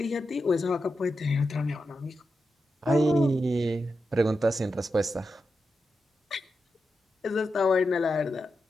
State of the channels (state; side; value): normal; both; correlation 0.88